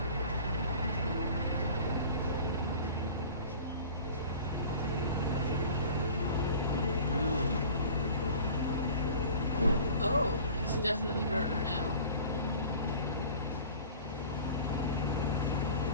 Oh, it's definitely murder now.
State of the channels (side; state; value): both; inverted; correlation -0.44